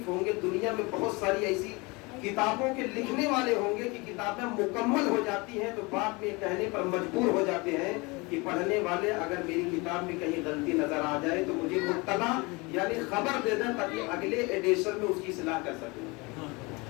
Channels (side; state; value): right; quieter; 26.3 dB